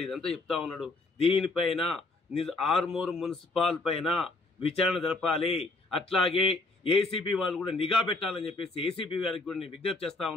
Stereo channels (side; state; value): right; quieter; 3.2 dB